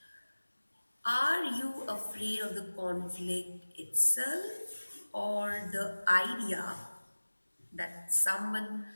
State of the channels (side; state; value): both; inverted; correlation -1.00